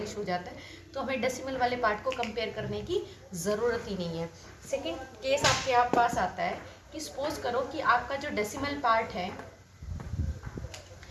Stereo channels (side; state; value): both; identical; correlation 1.00